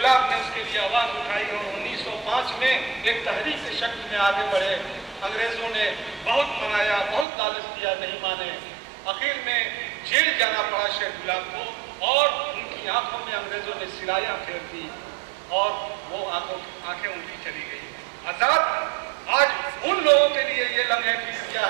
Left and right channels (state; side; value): drops out; left; at 7.2 s